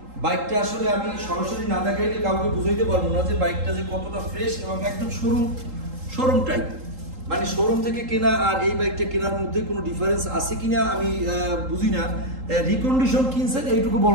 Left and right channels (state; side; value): late; left; 3.8 ms